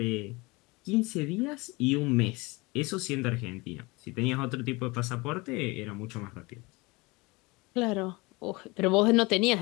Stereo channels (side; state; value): right; quieter; 24.6 dB